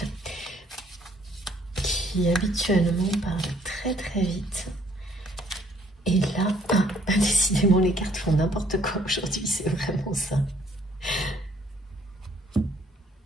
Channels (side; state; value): both; normal; correlation 0.63